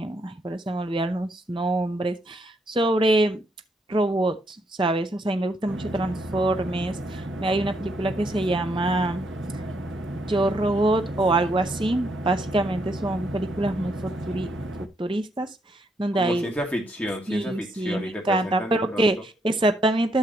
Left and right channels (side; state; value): both; normal; correlation 0.75